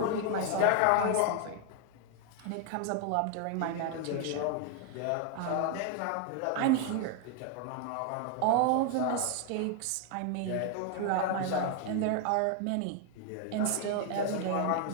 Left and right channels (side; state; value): both; different; correlation 0.00